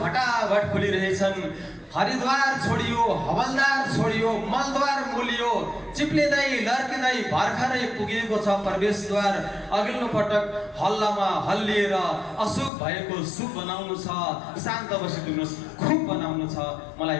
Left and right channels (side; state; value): right; drops out; at 12.7 s